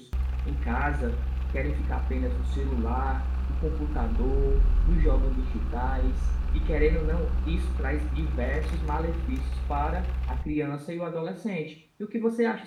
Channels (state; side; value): identical; both; correlation 1.00